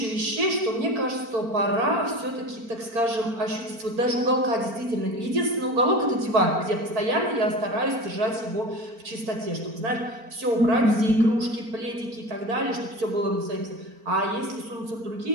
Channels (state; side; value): late; left; 4.4 ms